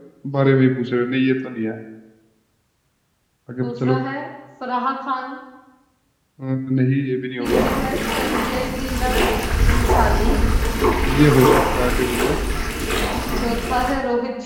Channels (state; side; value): identical; both; correlation 1.00